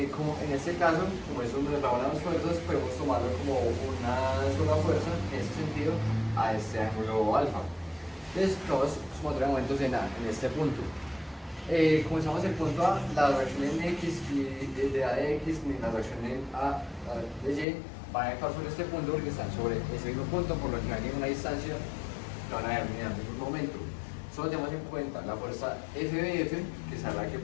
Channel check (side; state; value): right; drops out; at 17.7 s